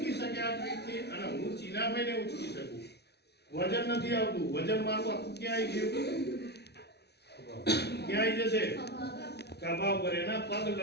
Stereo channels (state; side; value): late; right; 0.49 ms